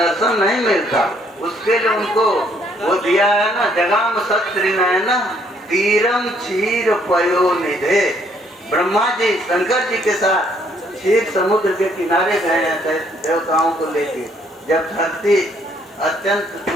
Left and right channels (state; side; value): normal; both; correlation 0.66